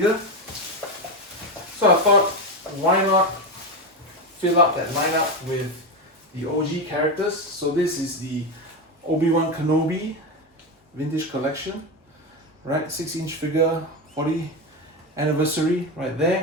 So I thought, why not fill up that lineup with the OG characters? So this is the Obi-Wan Kenobi Vintage Collection, right? 6-inch figure, 40th anniversary right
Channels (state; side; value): normal; both; correlation 0.14